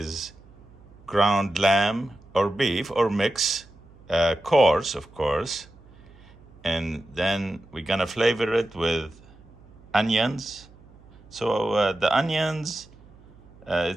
ground lamb or beef or mix, coarse of course, and then we're gonna flavor it with onions. So the onions,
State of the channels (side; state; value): right; noise; hum, 25 dB below the sound